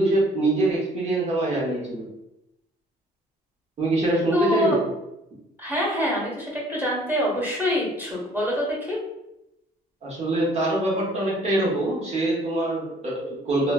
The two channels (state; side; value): normal; both; correlation 0.57